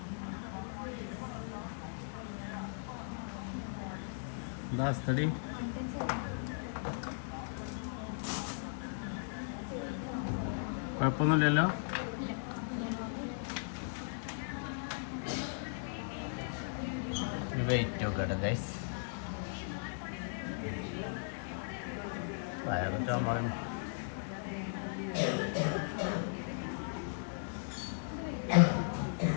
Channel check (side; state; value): right; silent; digital silence